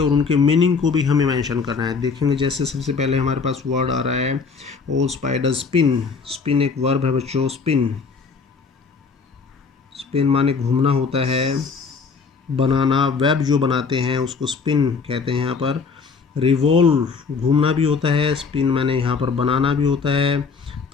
उनके मीनिंग को भी हमें मेंशन करना है। देखेंगे जैसे सबसे पहले हमारे पास वर्ड आ रहा है ओ स्पाइडर स्पिन। स्पिन एक वर्ब है बच्चों, स्पिन, स्पिन माने घूमना होता है, बनाना, वेब जो बनाते हैं उसको स्पिन कहते हैं यहाँ पर। रिवॉल्व घूमना भी होता है, स्पिन मैंने यहाँ पर बनाना भी होता है,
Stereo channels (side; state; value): right; quieter; 5.2 dB